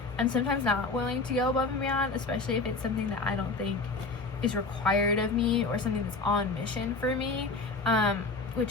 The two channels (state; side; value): quieter; right; 3.7 dB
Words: I'm sometimes not willing to go above and beyond, especially if it's something that I don't think is required of me or something that's on mission for me,